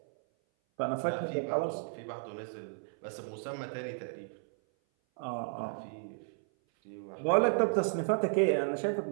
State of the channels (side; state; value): left; silent; 55 dB below the other